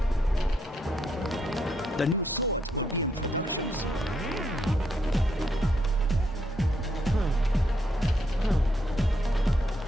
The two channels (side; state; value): both; normal; correlation 0.77